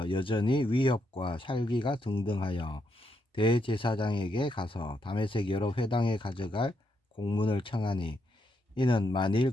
여전히 위협과 살기가 등등하여 대제사장에게 가서 다메섹 여러 회당에 가져갈 공문을 청하니, 이는 만일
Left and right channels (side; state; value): both; normal; correlation 0.79